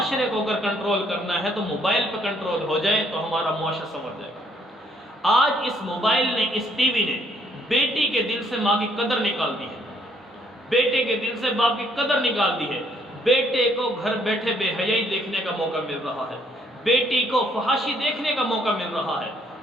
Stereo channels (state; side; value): normal; both; correlation 0.66